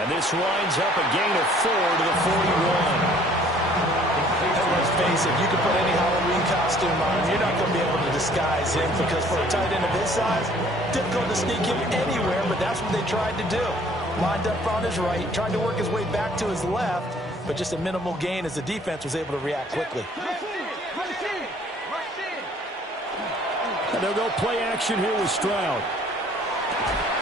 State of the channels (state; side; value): normal; both; correlation 0.57